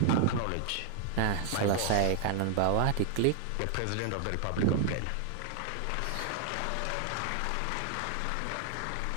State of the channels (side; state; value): both; different; correlation 0.00